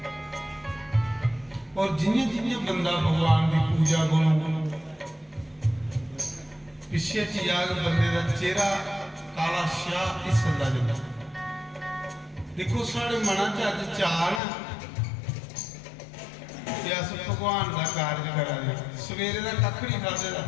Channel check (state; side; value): drops out; right; at 14.4 s